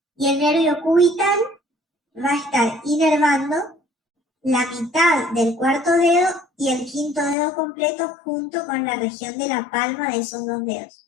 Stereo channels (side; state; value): right; drops out; at 7.4 s